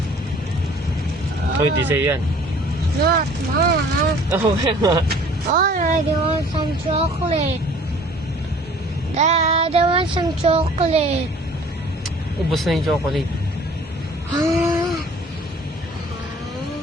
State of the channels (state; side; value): normal; both; correlation 0.51